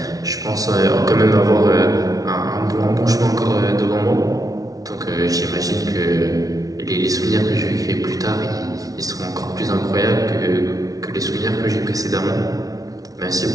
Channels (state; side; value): late; left; 0.18 ms